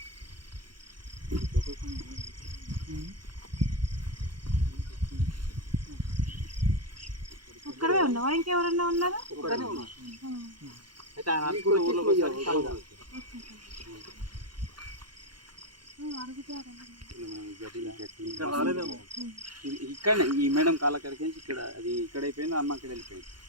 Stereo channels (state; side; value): late; left; 0.71 ms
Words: ఒక్కడే ఉన్నావా? ఇంకెవరన్నా ఉన్నారా? అయితే ఆయన ఇక్కడ ఈ మేడం కాలకరికి ఇక్కడ అది ఇక్కడ అయిపోయింది. అమ్మ అక్కడ వెళ్ళిపోయింది.